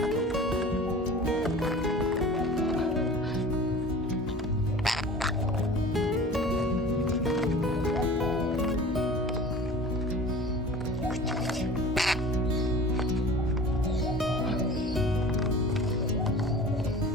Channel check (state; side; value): normal; both; correlation 0.40